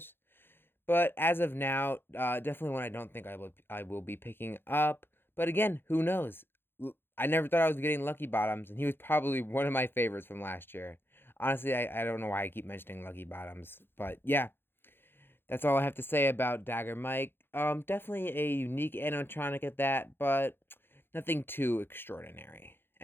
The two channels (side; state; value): right; late; 0.10 ms